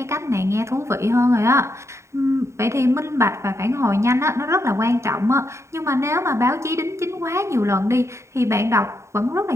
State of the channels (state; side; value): late; left; 0.14 ms